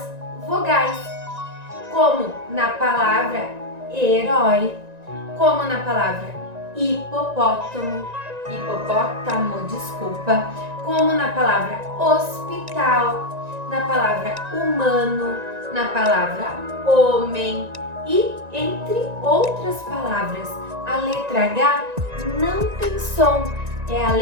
vogais. Como na palavra herói, como na palavra hipopótamo, como na palavra hospital, na palavra humano, na palavra homem e entre outras palavras. A letra H não tem som, é a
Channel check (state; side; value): late; left; 1.9 ms